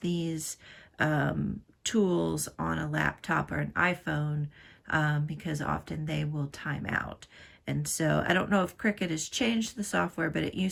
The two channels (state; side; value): identical; both; correlation 1.00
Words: tools on a laptop or an iPhone because often they will time out. And so I don't know if Cricut has changed the software, but it